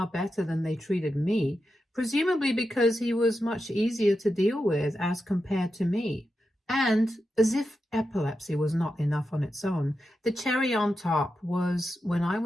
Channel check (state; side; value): normal; both; correlation 0.89